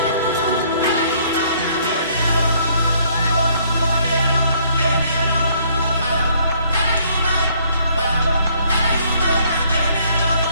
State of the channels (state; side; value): inverted; both; correlation -0.64